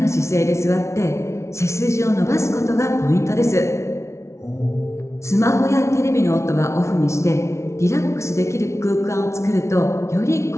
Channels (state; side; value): late; right; 0.13 ms